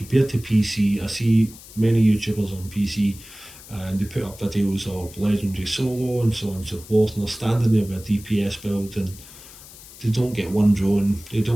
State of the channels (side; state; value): left; noise; hiss, 18 dB below the sound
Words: to PC, I see many YouTubers on PC and they put up videos of legendary solo and so on and so forth, and they're standing there with a DPS build and they don't get one drone, they